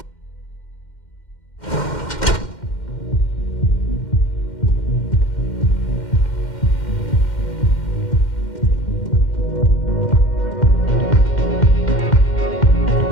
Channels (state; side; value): late; right; 2.1 ms